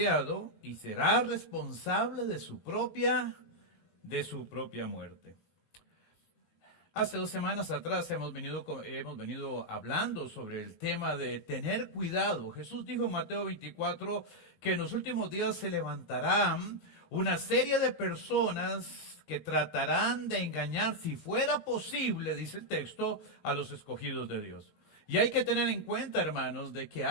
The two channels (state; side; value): late; right; 19 ms